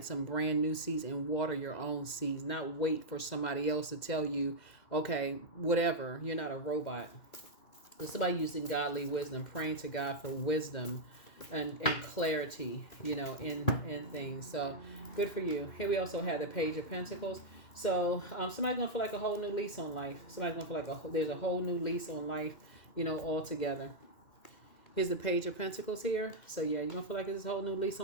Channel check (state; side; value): late; right; 2.1 ms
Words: some brand new seeds and water your own seeds, not wait for somebody else to tell you, okay, whatever, you're not a robot. So somebody using godly wisdom, praying to God for wisdom and clarity, in things. So good for you. Here we also have the Page of Pentacles. So somebody's going to feel like a whole new lease on life. Somebody's going to feel like there's a whole new lease on life, altogether. Here's the Page of Pentacles here. So yeah, you're going to feel like there's a whole new lease